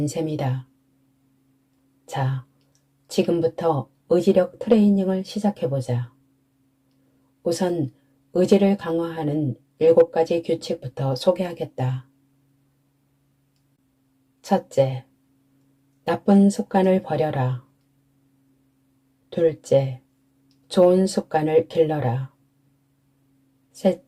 셈이다. 자, 지금부터 의지력 트레이닝을 시작해보자. 우선 의지를 강화하는 7가지 규칙부터 소개하겠다. 첫째, 나쁜 습관을 버려라. 둘째, 좋은 습관을 길러라.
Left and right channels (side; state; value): both; identical; correlation 1.00